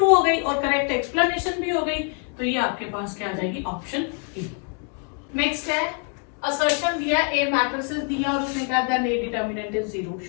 हो गई और करेक्ट एक्सप्लेनेशन भी हो गई। तो ये आपके पास क्या आ जाएगी, ऑप्शन ए। नेक्स्ट है असर्शन दिया, ए मैट्रिसेस दिया और उसने कहा that A determinant is 0,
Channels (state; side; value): quieter; right; 39.4 dB